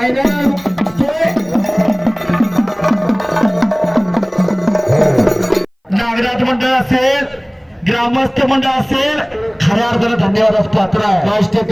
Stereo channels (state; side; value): identical; both; correlation 1.00